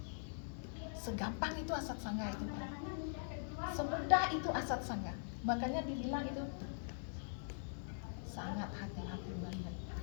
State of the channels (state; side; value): silent; right; digital silence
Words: Segampang itu asat sangga itu. Semudah itu asat sangga. Makanya dibilang itu sangat hati-hati banget.